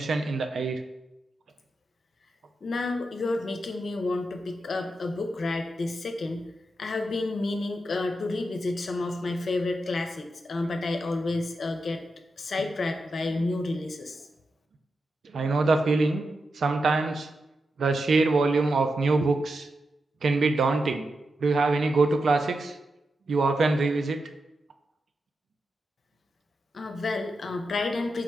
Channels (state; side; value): normal; both; correlation 0.88